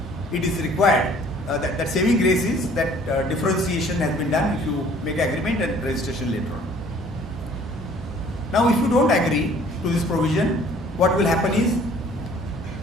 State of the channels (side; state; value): both; normal; correlation 0.55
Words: it is required that saving grace is that differentiation has been done if you make agreement and registration later on. Now, if you don't agree to this provision, what will happen is